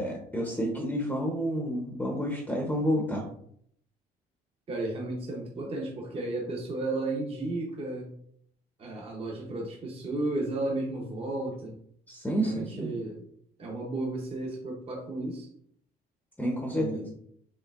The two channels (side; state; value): both; normal; correlation 0.65